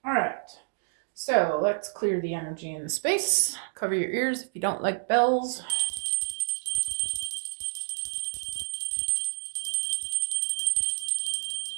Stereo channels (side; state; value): left; silent; digital silence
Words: All right. So, let's clear the energy in the space. Cover your ears if you don't like bells.